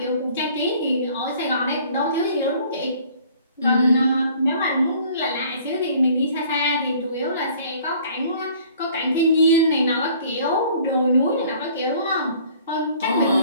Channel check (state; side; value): inverted; both; correlation -0.54